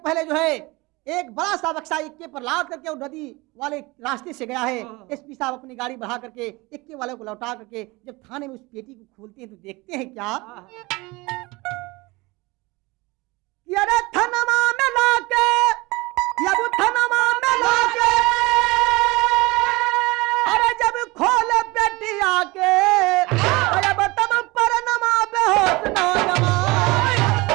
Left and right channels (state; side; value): quieter; left; 23.3 dB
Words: पहले जो है एक बड़ा सा बक्सा इक्के पर लाद करके और नदी वाले रास्ते से गया है। एसपी साहब अपनी गाड़ी बढ़ा करके इक्के वाले को लौटा करके जब थाने में उस पेटी को खोलते हैं तो देखते हैं क्या कि अरे थनमा में लाके, अब थनमा में लाके, अरे जब खोले पेटी आके, अरे तब पर नमा बेहोश नौजवान।